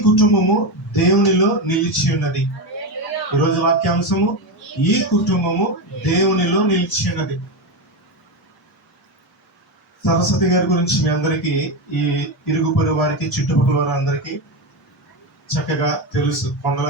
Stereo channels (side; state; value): both; normal; correlation 0.14